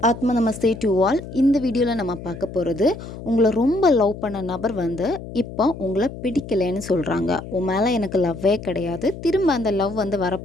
ஆத்ம நமஸ்தே to all. இந்த வீடியோவில் நம்ம பார்க்க போகிறது, உங்களை ரொம்ப லவ் பண்ண நபர் வந்து இப்போ உங்களை பிடிக்கலைன்னு சொல்கிறாங்க. உன் மேலே எனக்கு லவ்வே கிடையாது, திரும்ப அந்த லவ் வந்து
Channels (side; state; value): left; noise; hum, 12 dB below the sound